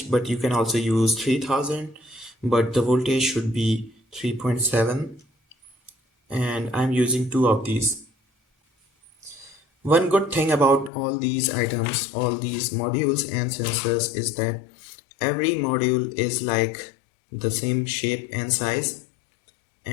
but you can also use 3000, but the voltage should be 3.7, and I'm using two of these. One good thing about all these items, all these modules and sensors, is that every module is like the same shape and size,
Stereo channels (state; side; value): drops out; right; at 10.9 s